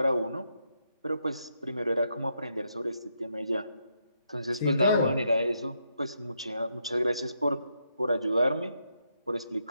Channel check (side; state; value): both; inverted; correlation -0.79